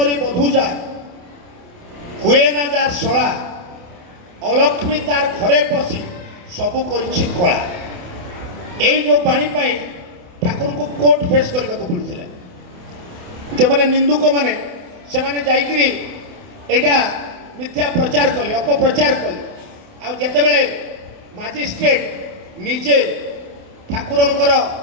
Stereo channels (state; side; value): late; left; 28 ms